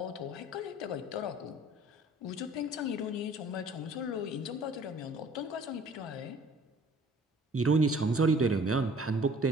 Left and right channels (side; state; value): both; normal; correlation 0.52